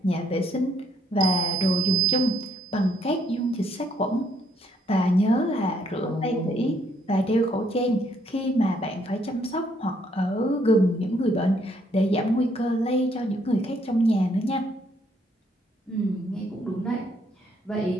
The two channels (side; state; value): both; normal; correlation 0.69